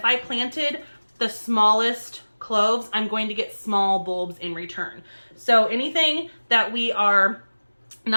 I planted the smallest cloves, I'm going to get small bulbs in return. So anything that we are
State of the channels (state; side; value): inverted; both; correlation -1.00